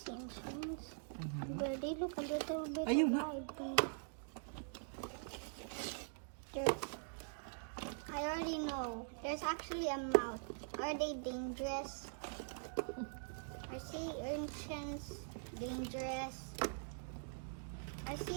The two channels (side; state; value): left; silent; digital silence